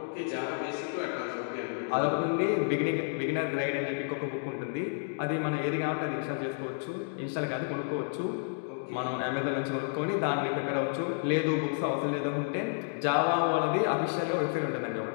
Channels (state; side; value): silent; right; digital silence